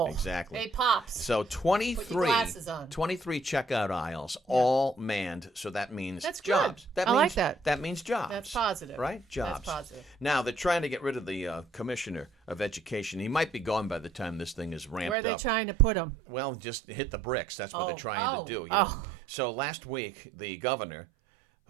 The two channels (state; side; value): drops out; left; at 15.2 s